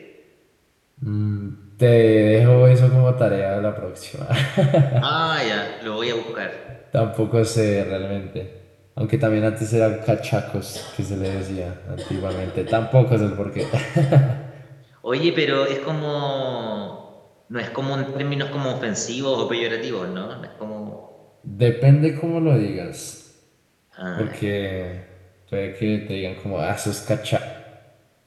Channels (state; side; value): identical; both; correlation 1.00